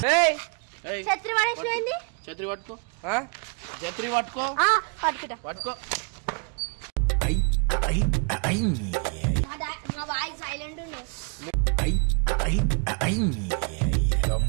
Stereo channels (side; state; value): left; quieter; 35.5 dB